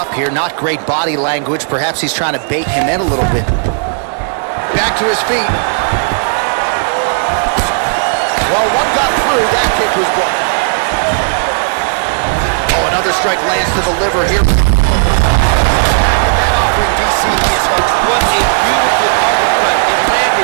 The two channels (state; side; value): silent; left; digital silence